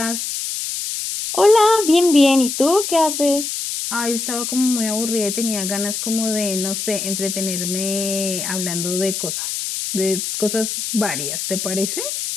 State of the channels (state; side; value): noise; left; hiss, 4 dB below the sound